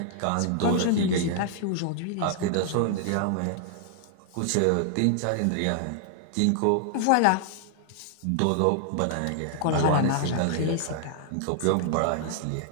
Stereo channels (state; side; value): different; both; correlation 0.00